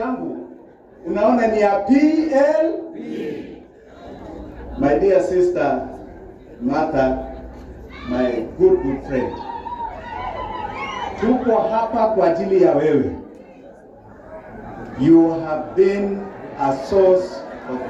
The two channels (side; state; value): both; identical; correlation 1.00